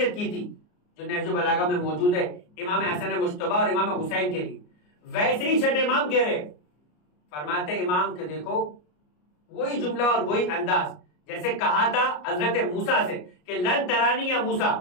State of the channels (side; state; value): right; late; 33 ms